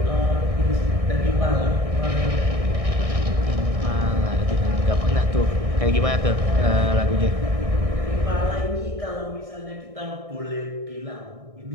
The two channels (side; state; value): left; late; 1.6 ms